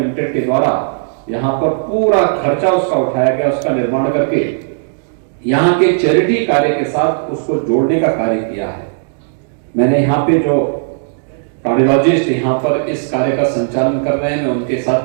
के द्वारा यहां पर पूरा खर्चा उसका उठाया गया, उसका निर्माण करके यहां के चैरिटी कार्य के साथ उसको जोड़ने का कार्य किया है। मैंने यहाँ पे जो कार्डियोलॉजिस्ट यहाँ पर इस कार्य का संचालन कर रहे हैं, मैं उनके साथ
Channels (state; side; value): silent; left; digital silence